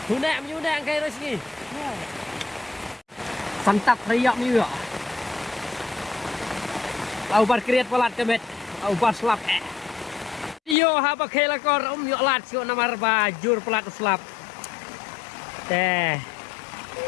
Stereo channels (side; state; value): right; drops out; at 10.8 s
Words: Huna menyuna angkai resmi. Santap riak ni ya. Lau bar kriat palat kemet. Au baslap. Yo haba khela kor yo lat sio namar bajur pelat uslap. Teh.